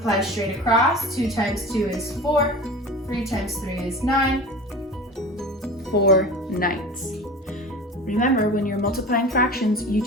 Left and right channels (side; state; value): both; normal; correlation 0.35